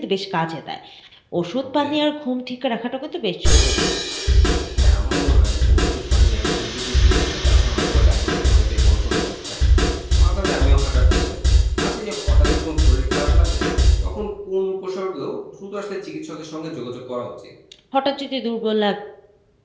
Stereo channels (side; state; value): both; identical; correlation 1.00